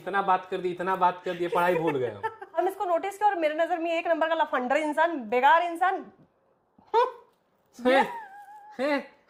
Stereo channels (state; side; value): identical; both; correlation 1.00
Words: बात कर दी, पढ़ाई भूल गए हम इसको नोटिस किया और मेरे नजर में एक नंबर का लफंडर इंसान, बेकार इंसान।